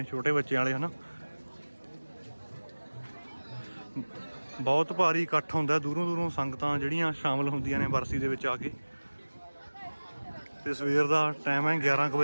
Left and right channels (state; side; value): inverted; both; correlation -1.00